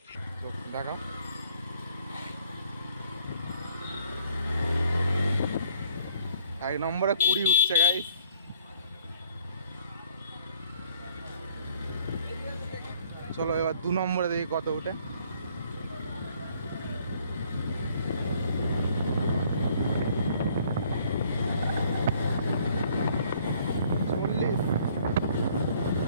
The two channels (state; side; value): inverted; both; correlation -0.60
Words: দেখা 1 নম্বরে 20 উঠছে গাইস। চলো এবার 2 নম্বরে দেখি কত উঠে।